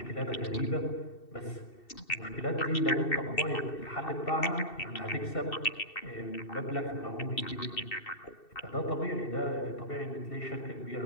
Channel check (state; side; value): late; right; 2.7 ms